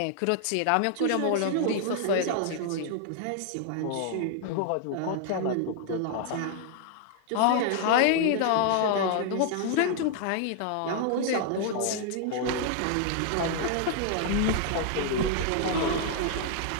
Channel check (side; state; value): both; different; correlation -0.01